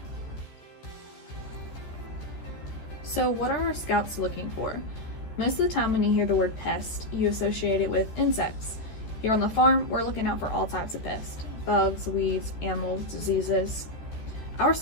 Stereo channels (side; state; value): right; late; 14 ms